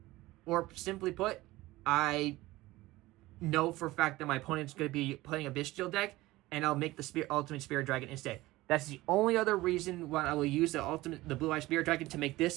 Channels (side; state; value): left; quieter; 18.6 dB